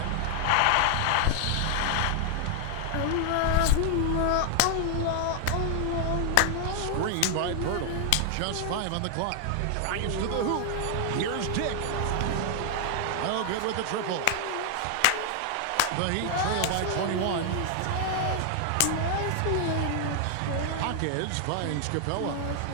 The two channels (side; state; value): both; different; correlation 0.00